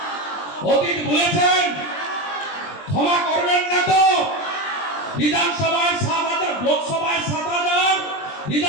অতীত ভুলেছেন? ক্ষমা করবেন না তো? বিধানসভায় 7,000, লোকসভায় 7,000,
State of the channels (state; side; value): late; right; 20 ms